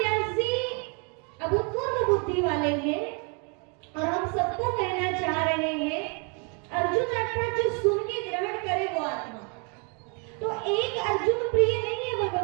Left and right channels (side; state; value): left; quieter; 35.7 dB